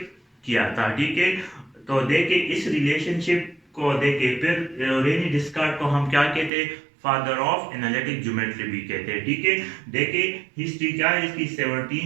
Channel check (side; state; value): left; drops out; at 6.5 s